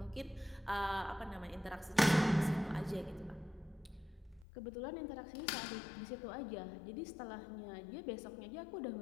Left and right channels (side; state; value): right; drops out; at 4.5 s